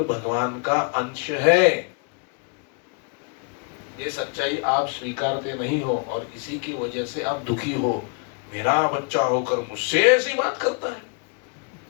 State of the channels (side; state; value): right; quieter; 36.0 dB